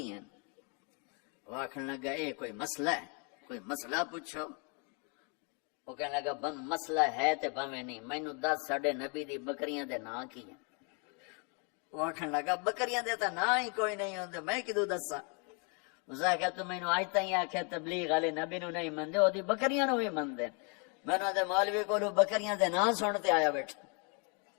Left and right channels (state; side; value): quieter; right; 35.8 dB